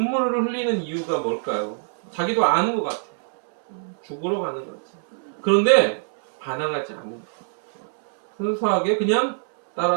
흘리는 이유가 뭘까요? 자기도 아는 것 같아요. 죽으러 가는 거지. 그런데 반항하지 않는 거예요. 순수하게 그냥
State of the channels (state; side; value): silent; left; 63 dB below the other